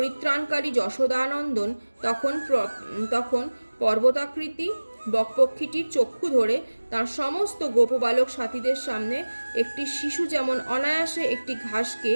যশোদানন্দন তখন পর্বতাকৃতি বকপক্ষীটির চক্ষু ধরে তার সমস্ত গোপবালক সাথীদের সামনে একটি শিশু যেমন অনায়াসে একটি ঘাসকে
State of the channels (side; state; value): both; inverted; correlation -1.00